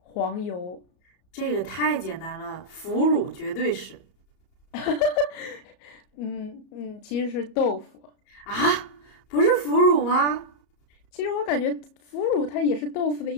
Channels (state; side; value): late; right; 34 ms